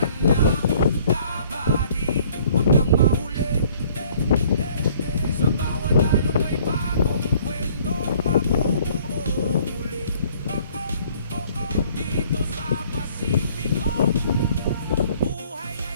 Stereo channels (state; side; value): inverted; both; correlation -0.57